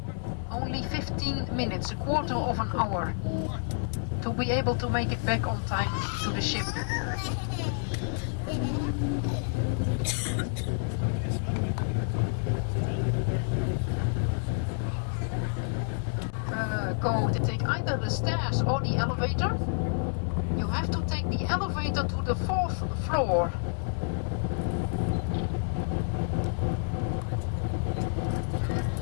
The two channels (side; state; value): right; silent; 58 dB below the other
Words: Only 15 minutes, a quarter of an hour. To be able to make it back on time to the ship. Go to take either the stairs or the elevator. You have to take the elevator to the 4th floor.